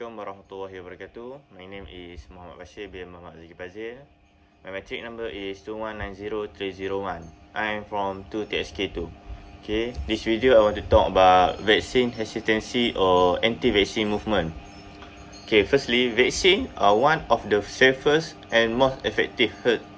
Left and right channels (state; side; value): identical; both; correlation 1.00